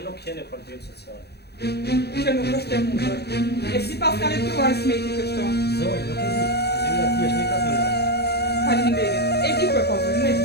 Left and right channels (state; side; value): late; right; 0.48 ms